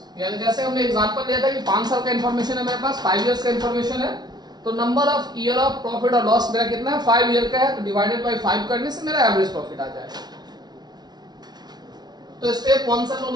यानी जैसे हमने एग्जांपल लिया था कि 5 साल का इंफॉर्मेशन है मेरे पास, 5 इयर्स का इंफॉर्मेशन है, तो number of year of profit और लॉस मेरा कितना है, 5 ईयर का है, तो डिवाइडेड बाय 5 करने से मेरा एवरेज प्रॉफिट आ जाएगा। तो स्टेप 1 से हम लोग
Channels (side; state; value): left; late; 0.19 ms